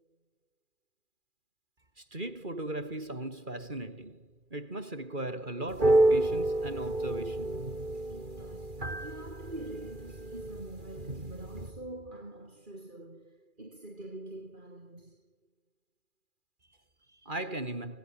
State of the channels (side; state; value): left; late; 2.4 ms